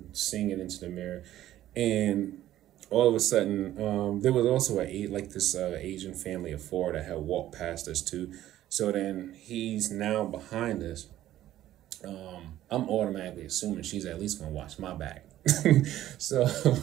singing into the mirror, and all of a sudden, there was also this Asian family of four that had walked past us too. So then he's now behind us. I'm automatically assuming she's at least gonna watch my back. So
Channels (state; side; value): quieter; left; 13.3 dB